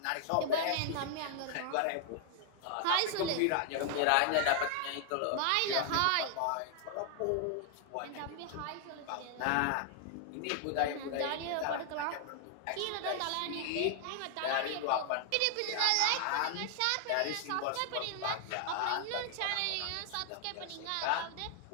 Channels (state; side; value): different; both; correlation 0.00